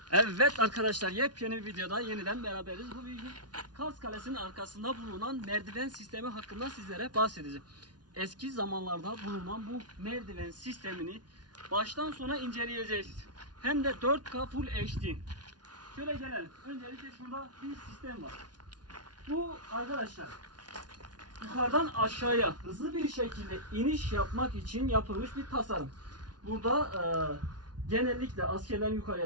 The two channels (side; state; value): left; late; 0.69 ms